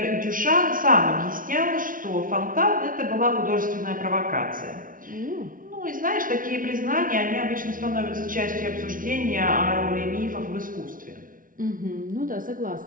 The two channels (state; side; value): late; left; 0.39 ms